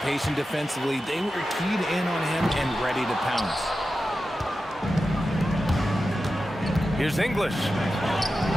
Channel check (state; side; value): normal; both; correlation 0.92